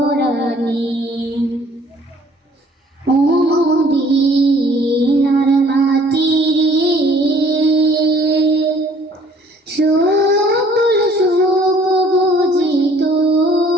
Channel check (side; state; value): both; normal; correlation 0.57